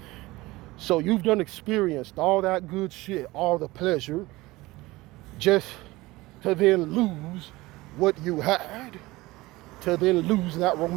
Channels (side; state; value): left; quieter; 20.1 dB